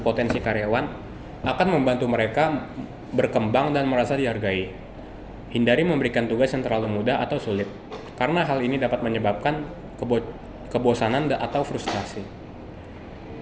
karyawan akan membantu mereka berkembang dan merasa dihargai. Hindari memberikan tugas yang terlalu mudah atau sulit, karena hal ini dapat menyebabkan kebosanan atau frustrasi.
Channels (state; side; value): identical; both; correlation 1.00